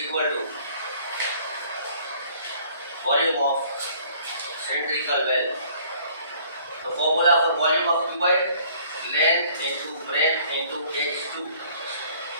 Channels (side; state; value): both; inverted; correlation -0.57